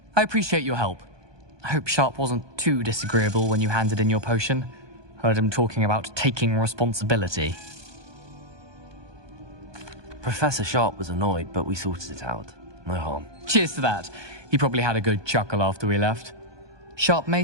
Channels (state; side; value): late; left; 1.2 ms